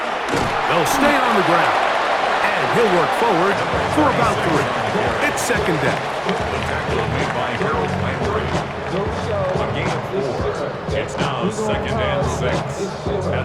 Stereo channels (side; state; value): both; identical; correlation 1.00